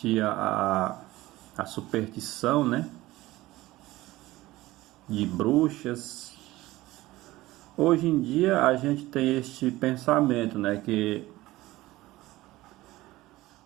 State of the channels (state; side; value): quieter; left; 17.9 dB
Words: a superstição, né, de bruxas. Hoje em dia a gente tem este pensamento, né, que